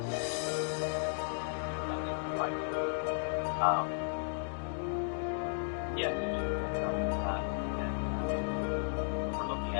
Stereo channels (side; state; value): right; silent; digital silence